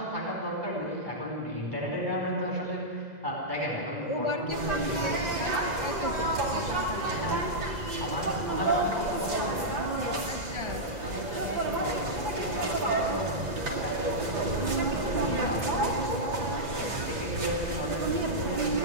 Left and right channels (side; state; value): left; late; 2.0 ms